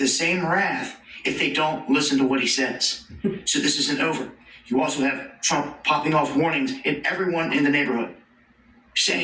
same wrath if they don't listen to what he says. So this isn't over. You also have Trump popping off warnings at everyone in the neighborhood,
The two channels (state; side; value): identical; both; correlation 1.00